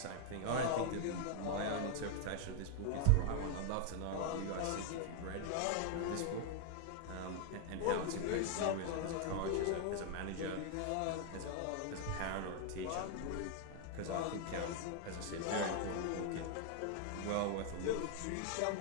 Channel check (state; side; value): different; both; correlation 0.00